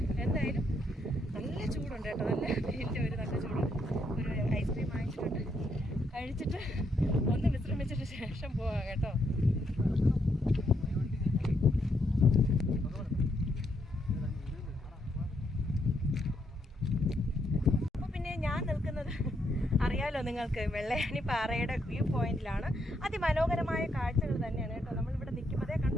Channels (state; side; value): normal; both; correlation 0.76